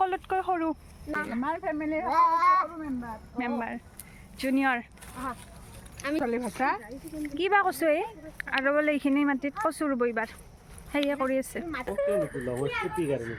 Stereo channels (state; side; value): identical; both; correlation 1.00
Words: সৰু আমাৰ ফেমিলিৰ মেম্বাৰ জুনিয়ৰ কিবা কৈছোঁ এই আৰু বোলে এইখিনি মাটিত কচু ৰুব এইবাৰ সেয়ে কৰি আছে